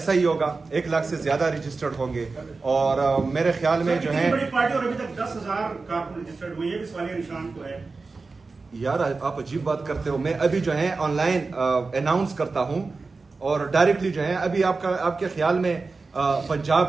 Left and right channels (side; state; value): left; quieter; 4.0 dB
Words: ہی ہوگا. 1 لاکھ سے زیادہ رجسٹرڈ ہوں گے اور میرے خیال میں جو ہے بڑی پارٹی اور ابھی تک 10,000 کارکن رجسٹرڈ ہوئے. یہ بھی سوالیہ نشان تو ہے. یار آپ عجیب بات کرتے ہو. میں ابھی جو ہے آن لائن اناؤنس کرتا ہوں اور ڈائریکٹلی جو ہے ابھی آپ کے خیال میں